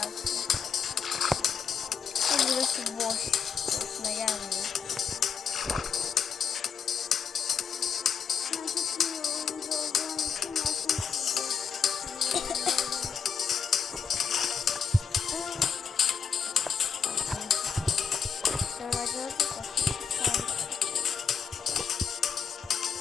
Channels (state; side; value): quieter; right; 6.6 dB